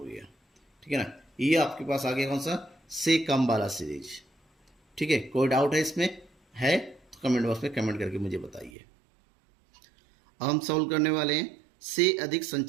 ठीक है ना, ये आपके पास आ गया कौन सा, से कम वाला सीरीज। ठीक है, कोई डाउट है इसमें, है तो कमेंट बॉक्स में कमेंट करके मुझे बताइए। अब हम सॉल्व करने वाले हैं से अधिक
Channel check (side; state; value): left; drops out; at 8.7 s